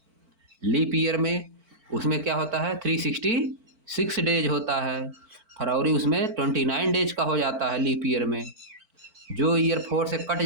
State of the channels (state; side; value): late; left; 4.5 ms